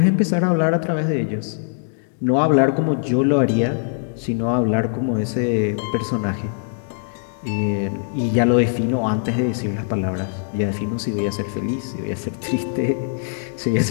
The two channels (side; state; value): right; silent; digital silence